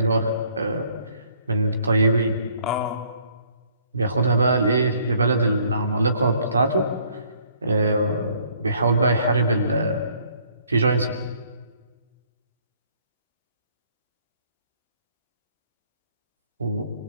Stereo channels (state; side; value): inverted; both; correlation -0.62